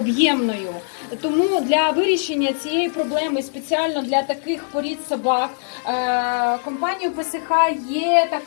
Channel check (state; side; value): silent; right; 65 dB below the other